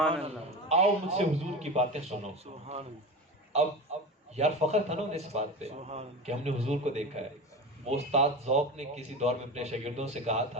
اللہ۔ آؤ مجھ سے حضور کی باتیں سنو۔ اب یار فخر تھا نا انہیں اس بات پہ کہ ہم نے حضور کو دیکھا ہے۔ وہ استاد ذوق نے کسی دور میں اپنے شاگردوں سے کہا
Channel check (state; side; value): normal; both; correlation 0.27